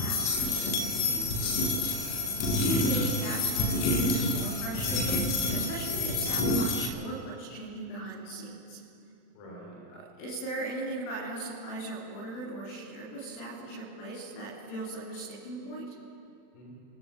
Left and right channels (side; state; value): right; late; 40 ms